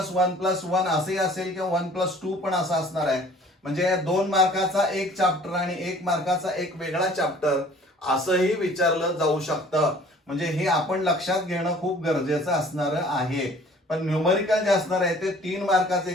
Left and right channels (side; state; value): both; normal; correlation 0.51